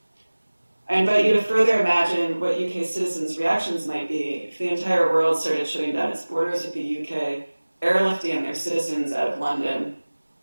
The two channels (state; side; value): inverted; both; correlation -1.00